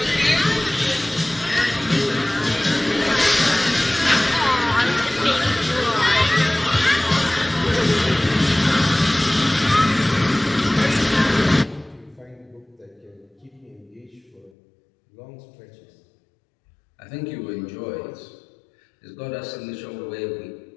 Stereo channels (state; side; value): drops out; right; at 14.5 s